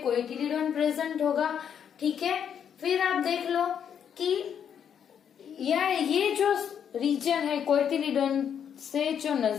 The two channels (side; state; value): right; quieter; 8.3 dB